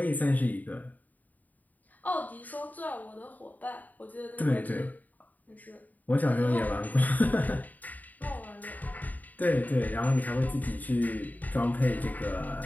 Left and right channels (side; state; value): right; late; 0.080 ms